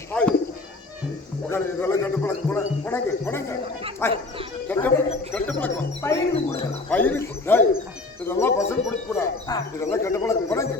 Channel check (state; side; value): quieter; right; 3.3 dB